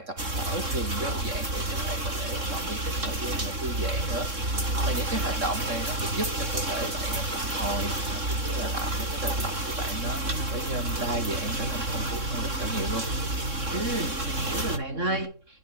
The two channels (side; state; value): left; late; 3.6 ms